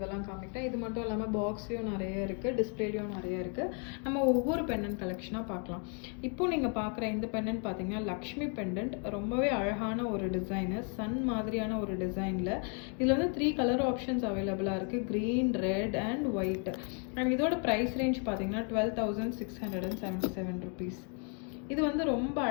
காமிக்கிறேன். இது மட்டும் இல்லாமல் பாக்ஸ்லேயும் நிறைய இருக்குது, டிஸ்பிளேலையும் நிறைய இருக்குது. நம்ம ஒவ்வொரு பெண்டன்ட் கலெக்ஷனாக பார்க்கலாம். இப்போ நீங்கள் பார்க்குற இந்த பெண்டன்ட் பார்த்தீங்கன்னா லக்ஷ்மி பெண்டன்ட். ரொம்பவே அழகான ஒரு டிசைனு, சன் மாதிரியான ஒரு டிசைனில். இதில் வந்து 3 கலர் ஆப்ஷன்ஸ் அவைலபிளாக இருக்குது, green, red and white. And இதோட ப்ரைஸ் ரேஞ்ச் பார்த்தீங்கன்னா 12,677 rupees. இது வந்து ரொம்ப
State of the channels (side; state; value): right; quieter; 39.8 dB